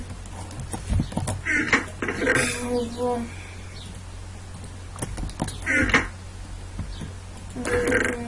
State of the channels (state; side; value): identical; both; correlation 1.00